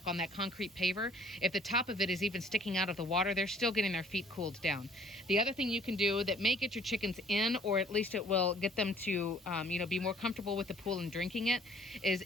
that concrete paver, if the top of it is even sticking out of the water, they're still getting their feet cooled down. The other thing you can do that may get your chickens in, or at least it will get them to be more comfortable with the pool and drinking it, is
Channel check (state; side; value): normal; both; correlation 0.57